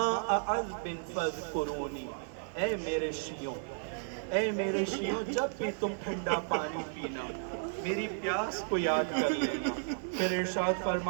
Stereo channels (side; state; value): left; silent; 55 dB below the other